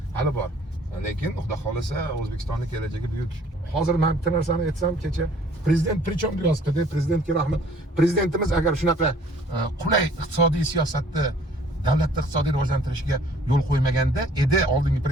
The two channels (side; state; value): both; normal; correlation 0.56